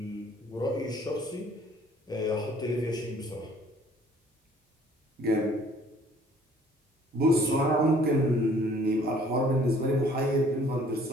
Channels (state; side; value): normal; both; correlation 0.57